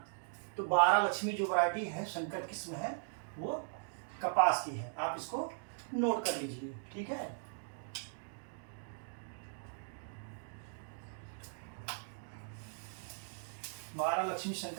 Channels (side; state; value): left; silent; digital silence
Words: तो 12 लक्ष्मी जो वैरायटी है, संकर किस्म है, वो कपास की है। आप इसको नोट कर लीजिए। ठीक है, 12 लक्ष्मी